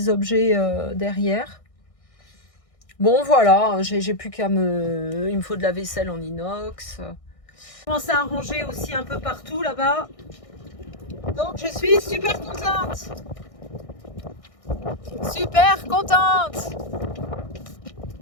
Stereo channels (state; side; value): late; right; 1.6 ms